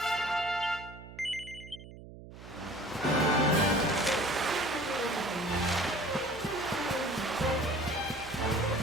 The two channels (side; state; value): right; noise; hum, 16 dB below the sound